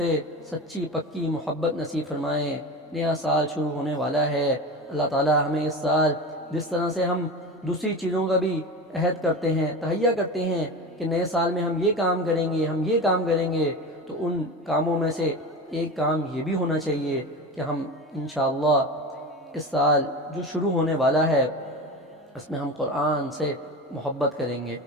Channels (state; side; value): normal; both; correlation 0.27